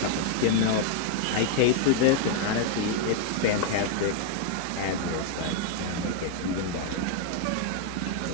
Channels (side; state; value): both; different; correlation 0.00